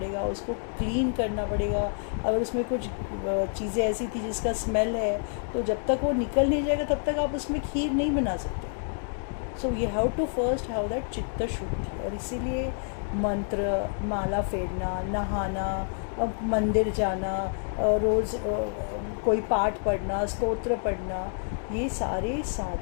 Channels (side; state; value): right; silent; 59 dB below the other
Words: उसको क्लीन करना पड़ेगा। अगर उसमें कुछ चीज़ें ऐसी थी जिसका स्मेल है, तो जब तक वो निकल नहीं जाएगा तब तक आप उसमें खीर नहीं बना सकते। So you have to first have that चित्त शुद्धि। और इसीलिए मंत्र, माला फेरना, नहाना, अब मंदिर जाना, रोज़ कोई पाठ पढ़ना, स्तोत्र पढ़ना, ये सारे